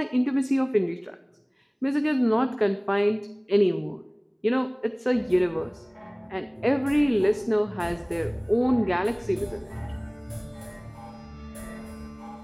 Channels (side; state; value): both; identical; correlation 1.00